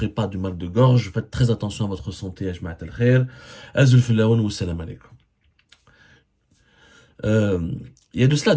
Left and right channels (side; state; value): both; identical; correlation 1.00